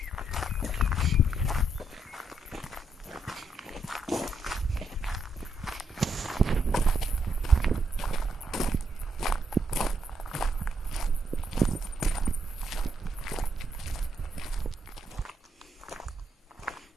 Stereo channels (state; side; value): normal; both; correlation 0.77